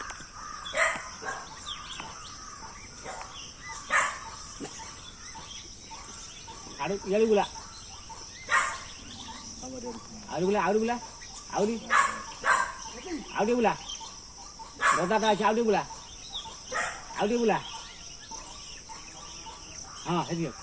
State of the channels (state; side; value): identical; both; correlation 1.00